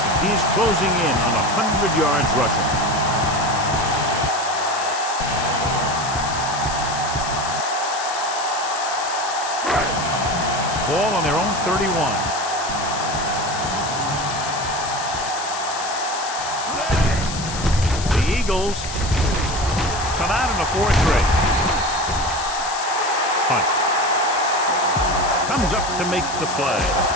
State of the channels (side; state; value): left; noise; hiss, 8 dB below the sound